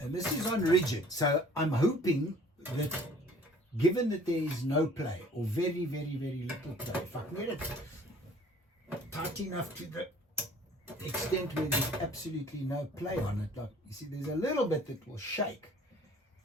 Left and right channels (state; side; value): normal; both; correlation 0.52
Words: this is on rigid. So I'm hoping that given that there is no play or very, very, very little play, if I can get it tight enough to the extent where there's absolutely no play on it, like you see there's a little bit that will shake,